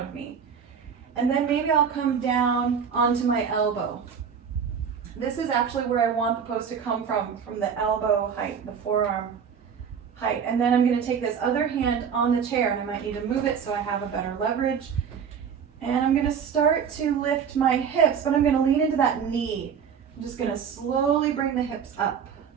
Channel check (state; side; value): quieter; left; 7.1 dB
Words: me. And then maybe I'll come down onto my elbow. This is actually where I want the pose to come from the elbow height, the forearm height. And then I'm gonna take this other hand on the chair, and I might need to move it so I have a better leverage. And I'm gonna start to lift my hips, but I'm gonna lean into that knee. I'm just gonna slowly bring the hips up